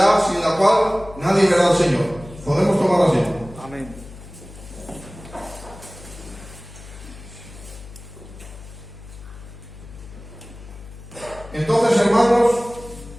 sin la cual nadie verá al Señor. Podemos tomar asiento. Amén. Entonces, hermanos,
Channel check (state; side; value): noise; left; hum, 17 dB below the sound